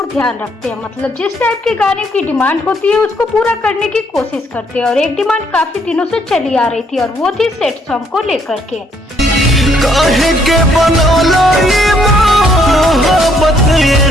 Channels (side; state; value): both; normal; correlation 0.69